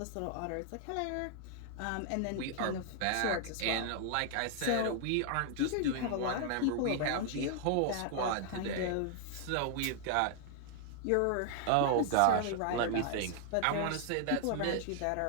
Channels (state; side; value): different; both; correlation 0.00